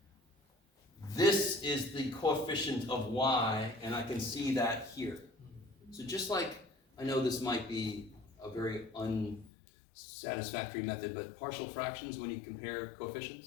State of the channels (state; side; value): drops out; right; at 9.5 s